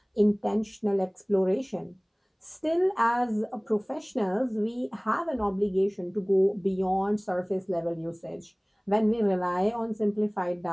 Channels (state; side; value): identical; both; correlation 1.00